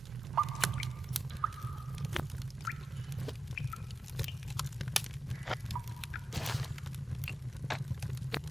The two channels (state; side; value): normal; both; correlation 0.91